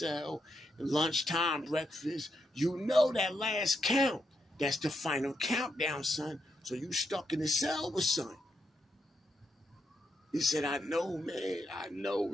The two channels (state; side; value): normal; both; correlation 0.82